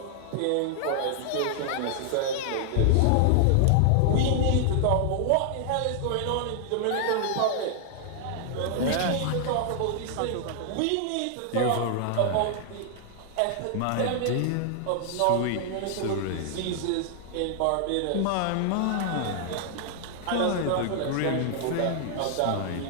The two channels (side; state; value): both; different; correlation 0.00